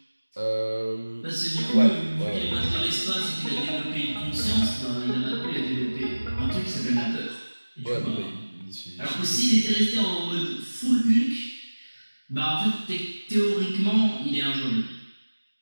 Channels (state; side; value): inverted; both; correlation -1.00